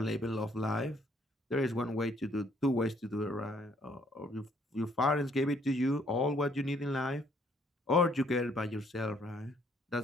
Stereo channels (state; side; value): normal; both; correlation 0.65